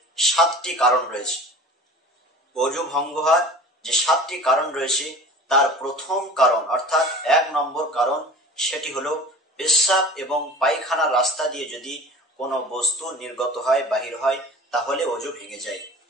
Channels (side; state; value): both; normal; correlation 0.40